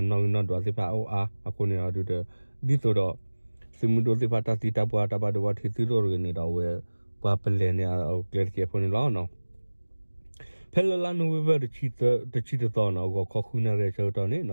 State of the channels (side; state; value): both; inverted; correlation -1.00